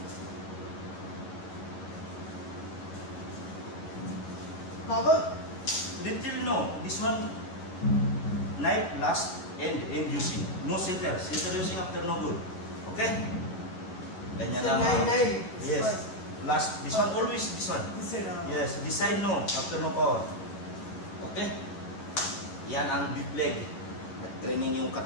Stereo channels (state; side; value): late; right; 11 ms